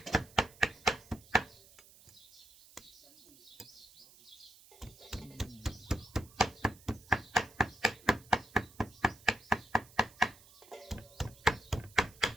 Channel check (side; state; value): right; noise; hiss, 23 dB below the sound